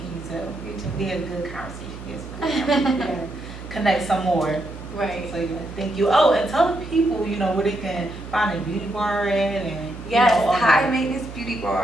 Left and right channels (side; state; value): right; noise; hum, 13 dB below the sound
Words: you too. You too. We had a good conversation. Yes, connect some more. Right. So yeah, thank you. Oh, and tell the people, where they can find a beauty bar at and Yes, all High that. Maintenance Beauty